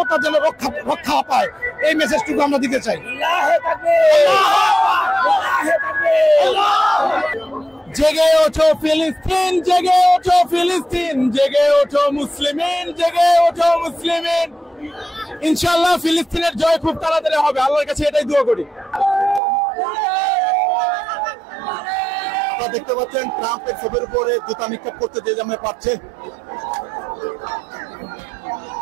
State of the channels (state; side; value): drops out; left; at 19.4 s